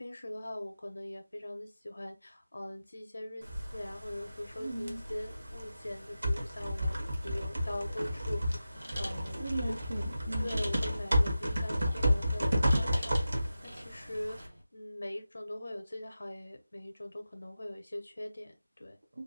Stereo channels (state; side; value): inverted; both; correlation -0.93